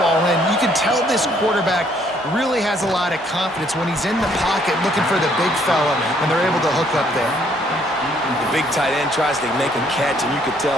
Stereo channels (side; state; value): both; normal; correlation 0.66